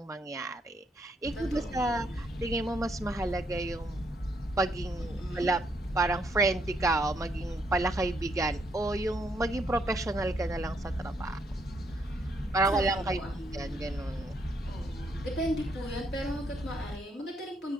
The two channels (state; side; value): normal; both; correlation 0.74